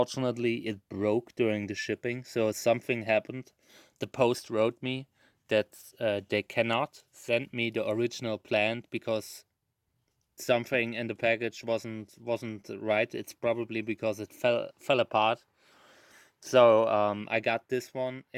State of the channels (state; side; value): identical; both; correlation 1.00